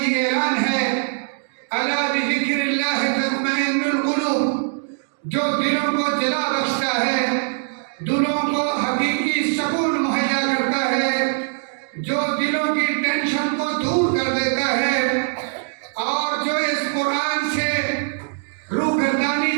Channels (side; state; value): left; silent; 64 dB below the other